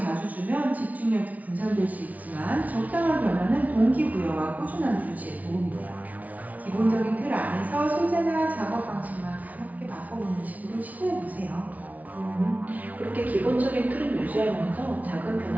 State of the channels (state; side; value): late; left; 0.073 ms